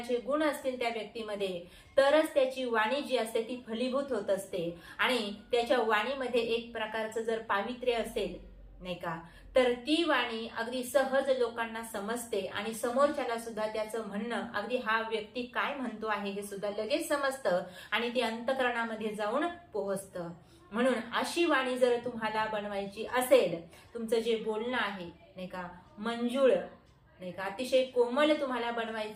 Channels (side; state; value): both; identical; correlation 1.00